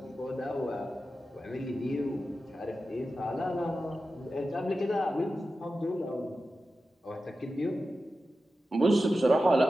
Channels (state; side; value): normal; both; correlation 0.92